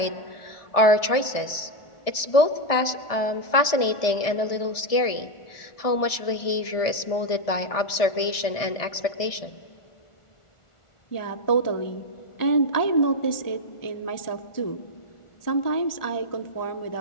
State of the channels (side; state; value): right; late; 1.6 ms